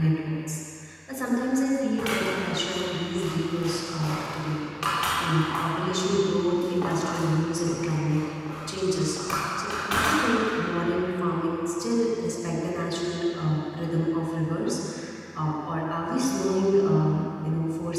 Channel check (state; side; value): identical; both; correlation 1.00